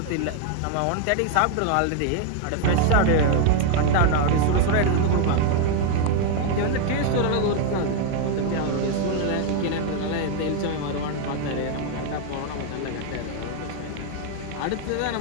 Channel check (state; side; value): different; both; correlation 0.00